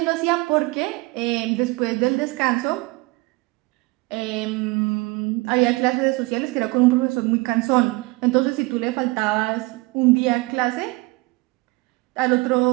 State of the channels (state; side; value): quieter; left; 24.3 dB